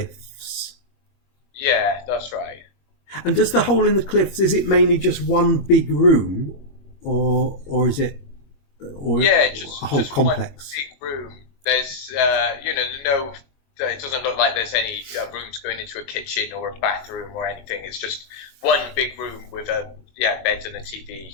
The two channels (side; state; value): right; late; 21 ms